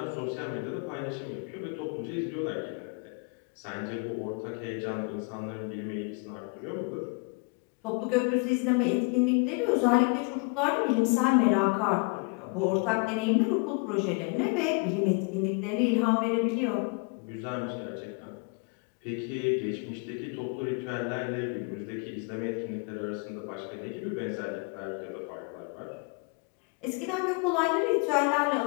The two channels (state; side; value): quieter; right; 32.9 dB